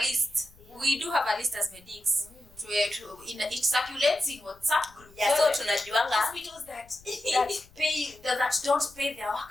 Yeah. We do have a list as medics. It circulates in WhatsApp group. Yeah, so tunajuanga hospitals that don't pay their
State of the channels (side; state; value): left; noise; rumble, 26 dB below the sound